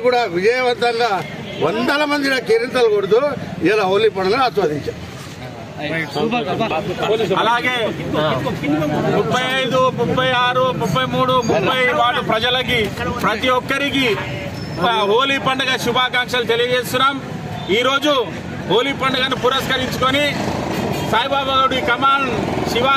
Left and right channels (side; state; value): both; identical; correlation 1.00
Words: కూడా విజయవంతంగా వందల మంది కేరింతలు కొడుతూ ఇలా హోలీ పండుగను ఆస్వాదించారు. అలాగే 35, 36, 33, 30 వార్డు ప్రజలకి ప్రతి ఒక్కరికి హోలీ పండుగ శుభాకాంక్షలు తెలియజేస్తున్నాం. ఈరోజు హోలీ పండుగను పురస్కరించుకొని సాయిబాబా గుడి కమాన్